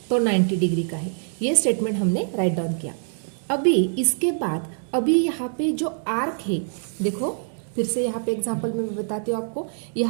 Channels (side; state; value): left; silent; digital silence